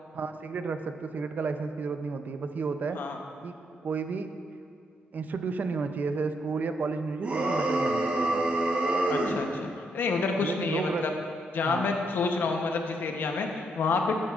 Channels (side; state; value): both; normal; correlation 0.76